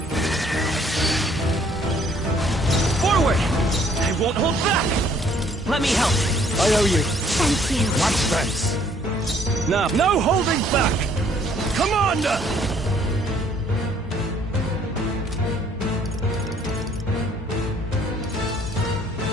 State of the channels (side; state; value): both; normal; correlation 0.62